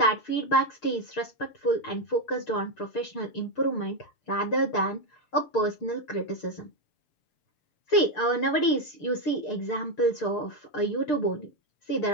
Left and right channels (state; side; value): late; right; 6.7 ms